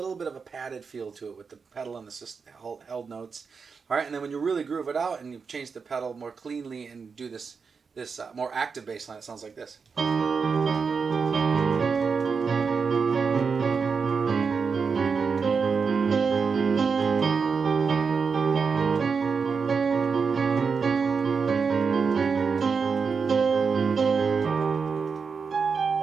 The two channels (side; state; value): left; quieter; 5.4 dB